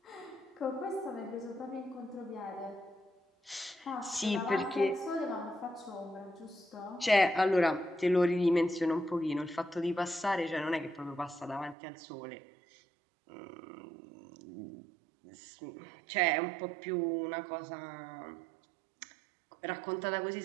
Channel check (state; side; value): drops out; left; at 11.8 s